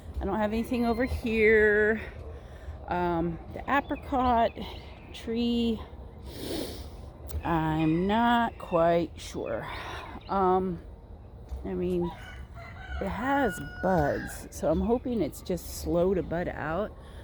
I don't have anything over here. The apricot tree, I'm not quite sure. I mean, it has buds, so I'm hoping it's just slow to bud out.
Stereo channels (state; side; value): identical; both; correlation 1.00